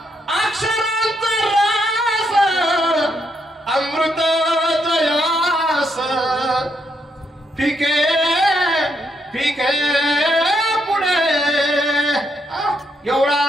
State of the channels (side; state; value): both; normal; correlation 0.77